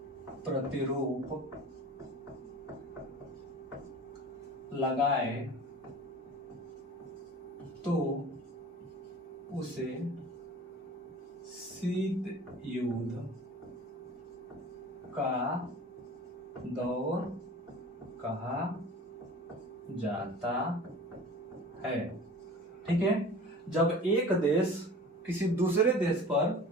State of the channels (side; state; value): both; normal; correlation 0.41